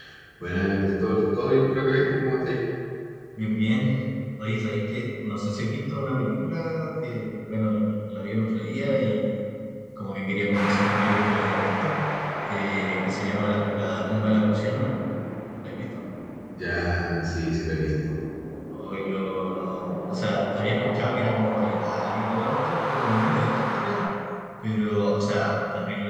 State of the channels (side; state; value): both; identical; correlation 1.00